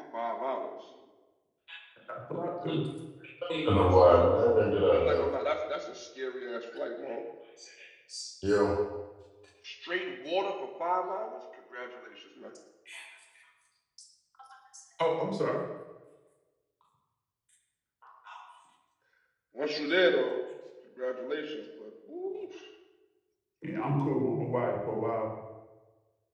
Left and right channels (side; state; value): both; identical; correlation 1.00